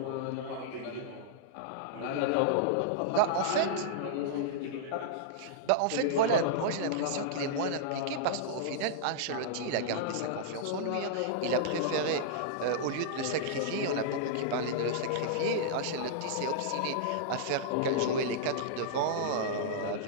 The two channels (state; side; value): different; both; correlation -0.02